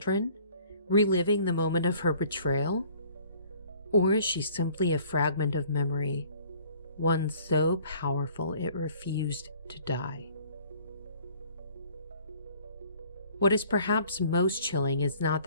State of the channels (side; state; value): both; inverted; correlation -0.54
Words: reliving the moment of her betrayal? Or is she simply a fragment of memory, one so powerful it refused to die? What is perhaps most chilling is not